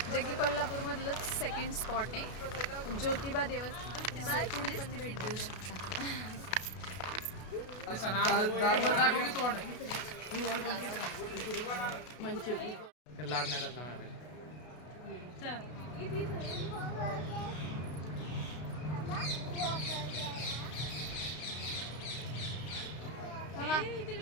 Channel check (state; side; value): late; right; 33 ms